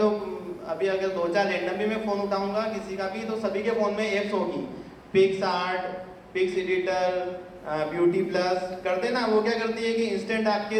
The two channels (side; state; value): both; identical; correlation 1.00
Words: अभी अगर 2-4 रैंडम भी मैं फ़ोन उठाऊंगा किसी का भी, तो सभी के फ़ोन में ऐप्स होगी। PicsArt, pics editor, BeautyPlus करते ना, वो क्या करती है कि इंस्टेंट